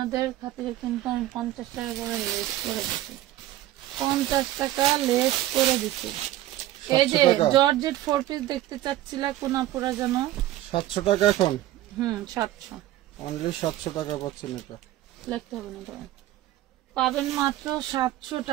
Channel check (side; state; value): left; quieter; 14.7 dB